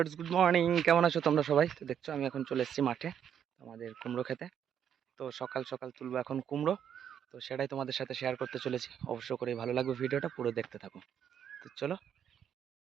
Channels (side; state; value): left; quieter; 8.9 dB